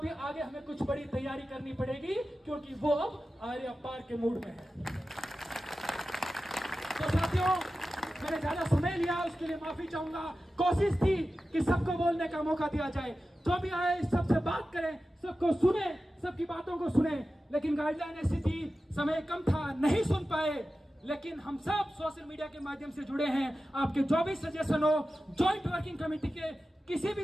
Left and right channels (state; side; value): normal; both; correlation 0.94